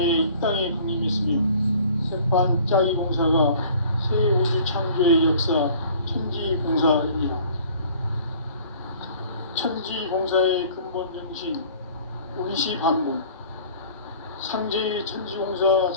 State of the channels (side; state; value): both; inverted; correlation -0.50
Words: 이 땅에 강림했으며, 새반짝이 공사가 새 우주 창조의 역사 천지공사이니라. 천지공사의 근본 정신 운시반본, 상제의 천지공사